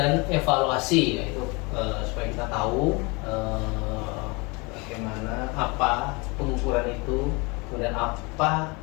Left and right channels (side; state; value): right; quieter; 27.9 dB